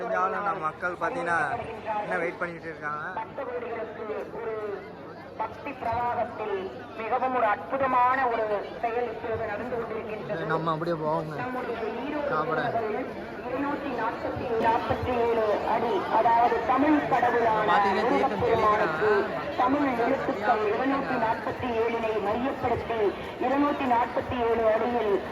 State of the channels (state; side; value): identical; both; correlation 1.00